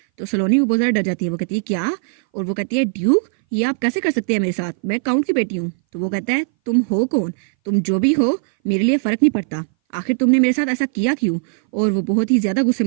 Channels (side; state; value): left; silent; 60 dB below the other